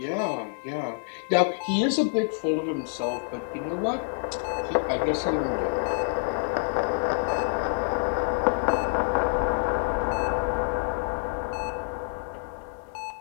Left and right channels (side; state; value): right; silent; 60 dB below the other